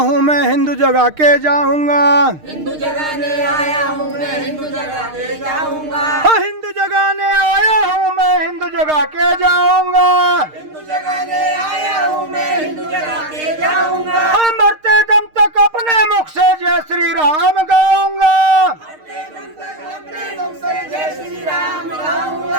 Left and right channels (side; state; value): left; late; 6.5 ms